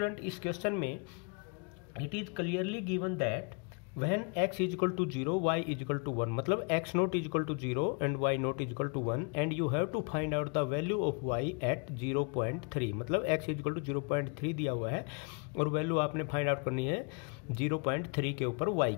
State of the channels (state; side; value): quieter; right; 36.1 dB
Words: इस क्वेश्चन में it is clearly given that when x is equal to 0 y is equal to 1 मतलब x naught is equal to 0 and y naught is equal to 1 and you have to find out the value of y at 0.3 मतलब x is equal to 0.3 दिया हुआ है और वैल्यू आपने फाइंड आउट करनी है 0.3 के ऊपर y